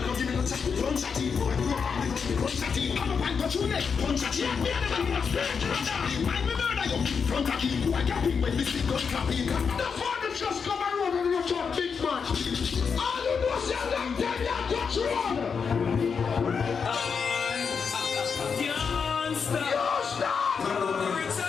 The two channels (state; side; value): quieter; right; 6.0 dB